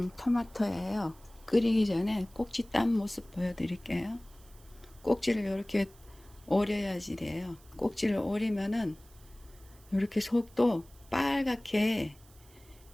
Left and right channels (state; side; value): noise; right; hiss, 26 dB below the sound